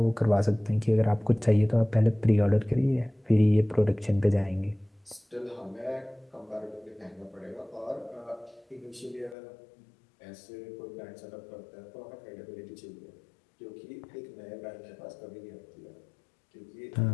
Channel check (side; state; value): right; drops out; at 9.3 s